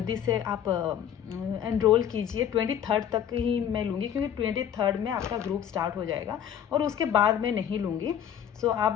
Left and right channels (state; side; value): quieter; right; 9.4 dB